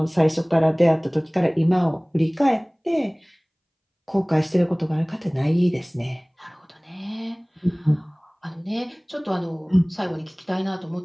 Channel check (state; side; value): identical; both; correlation 1.00